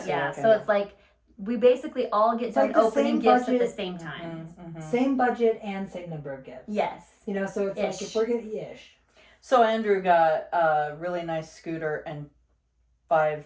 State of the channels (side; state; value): both; identical; correlation 1.00